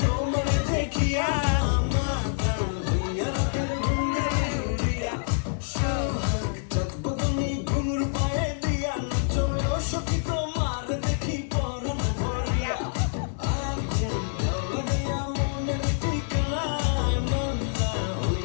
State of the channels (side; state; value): right; silent; digital silence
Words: দেখিয়া মাথা হইয়া রাতের ঘুমে উড়িয়া, সোহাগ চাঁদ বদনী ঘুঙুর পায়ে দিয়া নাচো সখী তোমার দেখি পরম ভরিয়া। আগুন লাগাইয়া মনের ঠিকানায়, মন না